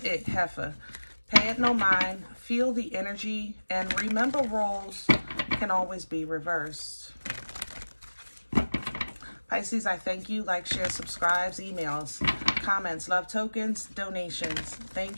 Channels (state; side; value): inverted; both; correlation -1.00